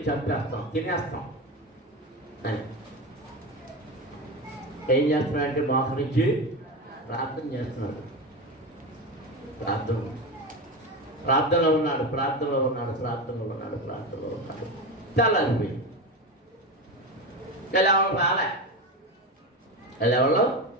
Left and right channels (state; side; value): normal; both; correlation 0.20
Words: చంపేస్తాం, తినేస్తాం అని. ఏం చేస్తున్నాడంటే మోకరించి ప్రార్థన చేస్తున్నాడు. ప్రార్థనలో ఉన్నాడు. తెల్లారిపోయి ఎవరో